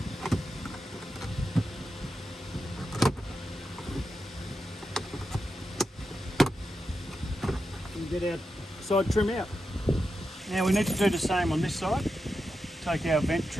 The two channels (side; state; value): both; normal; correlation 0.88